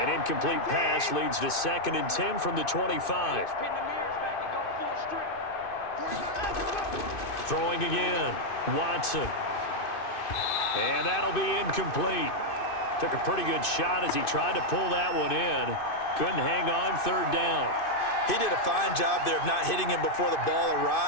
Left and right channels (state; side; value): late; right; 2.6 ms